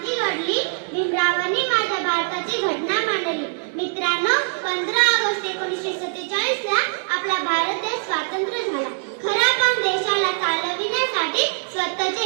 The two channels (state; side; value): silent; left; 64 dB below the other